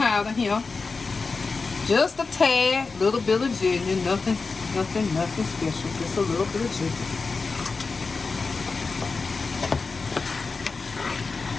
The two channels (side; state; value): right; quieter; 4.3 dB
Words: here. Just a tad, little bit of ginger, nothing special. Just a little bit of ginger.